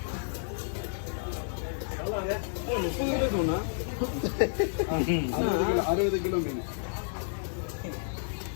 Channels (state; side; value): silent; right; digital silence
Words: ₹60 kilo மீன்